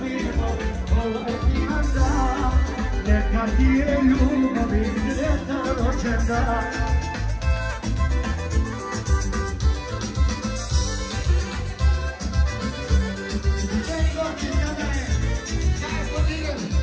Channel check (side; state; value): both; identical; correlation 1.00